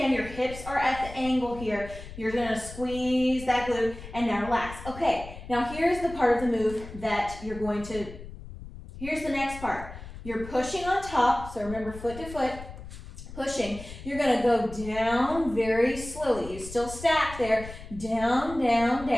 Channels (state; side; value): noise; left; rumble, 13 dB below the sound